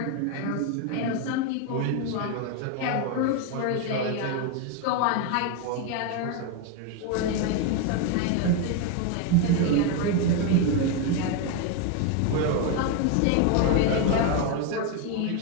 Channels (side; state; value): both; different; correlation 0.02